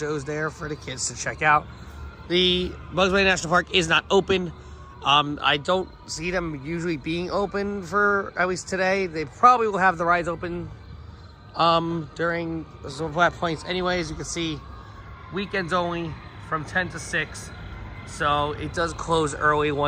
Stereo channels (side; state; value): both; identical; correlation 1.00